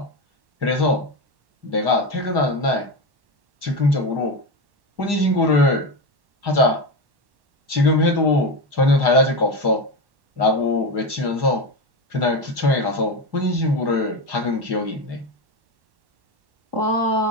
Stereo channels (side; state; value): left; late; 1.1 ms